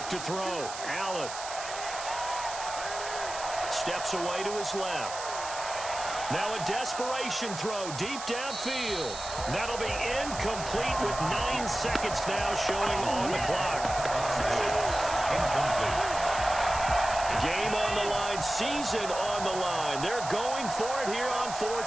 to throw. Allen steps away to his left. Now a desperation throw deep downfield. That'll be incomplete with 9 seconds now showing on the clock. Game on the line, season on the line. They're going for it here on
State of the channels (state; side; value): noise; right; hiss, 9 dB below the sound